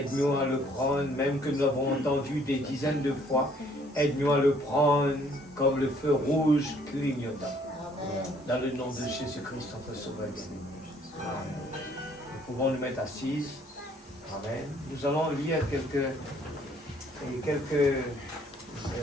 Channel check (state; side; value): normal; both; correlation 0.62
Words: à le prendre, même que nous l'avons entendu des dizaines de fois, aide-nous à le prendre comme le feu rouge clignotant. Dans le nom de Jésus-Christ, notre Sauveur bien-aimé. Nous pouvons nous mettre assises. Amen. Nous allons lire quelques